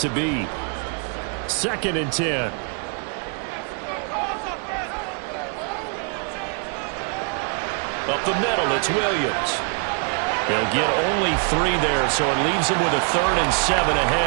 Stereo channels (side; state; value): left; quieter; 38.1 dB